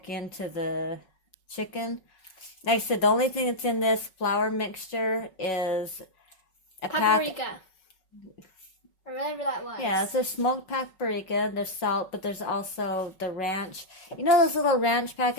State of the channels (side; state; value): right; late; 5.4 ms